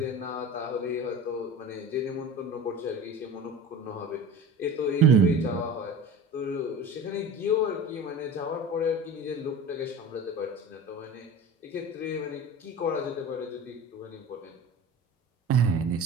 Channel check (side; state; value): both; normal; correlation 0.35